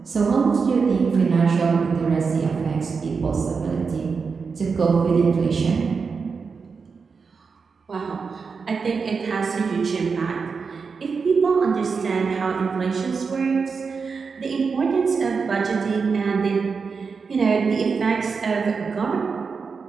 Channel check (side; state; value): left; quieter; 5.2 dB